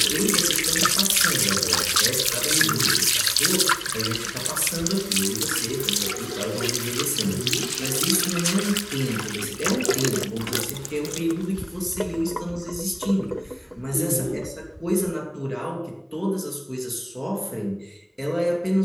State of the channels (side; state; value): both; identical; correlation 1.00